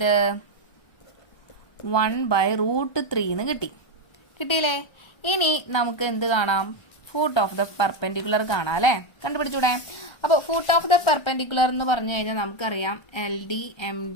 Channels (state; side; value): late; right; 1.3 ms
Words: 1/√3 എന്ന് കിട്ടിയില്ലേ? ഇനി നമുക്ക് എന്ത് കാണാം? ഫൂട്ട് ഓഫ് ദ പെർപെൻഡിക്കുലർ കാണാം അല്ലേ. കണ്ടുപിടിച്ചൂടെ? അപ്പോൾ ഫൂട്ട് ഓഫ് ദ പെർപെൻഡിക്കുലർ എന്ന് പറഞ്ഞു കഴിഞ്ഞാൽ നമുക്കറിയാം LD